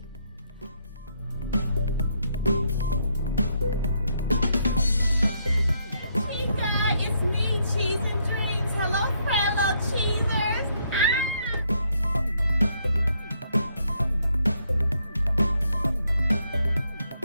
Hey guys, it's me, Cheezin Dreams. Hello, fellow cheesers.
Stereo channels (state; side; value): inverted; both; correlation -0.73